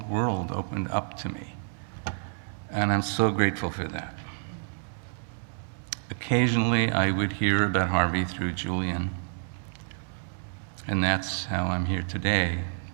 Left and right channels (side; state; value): left; silent; digital silence